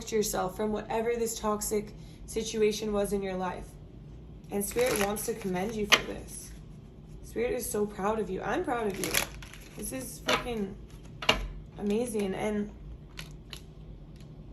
yourself from whatever this toxic situation was in your life. And Spirit wants to commend you for this. Spirit is so proud of you. I'm proud of you. This is freaking amazing. And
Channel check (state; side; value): identical; both; correlation 1.00